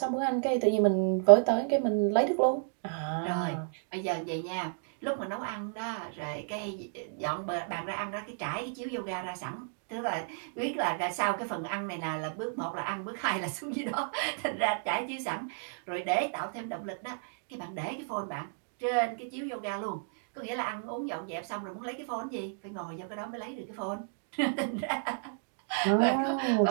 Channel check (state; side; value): silent; left; digital silence